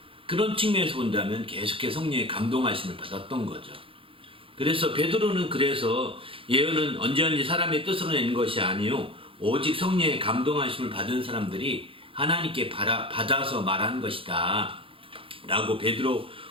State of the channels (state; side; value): late; left; 0.26 ms